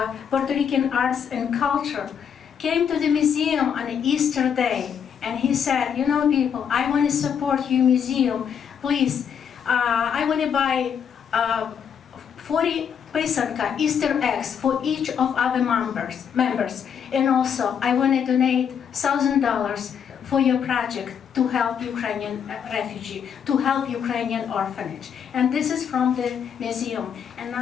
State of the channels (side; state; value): right; quieter; 7.8 dB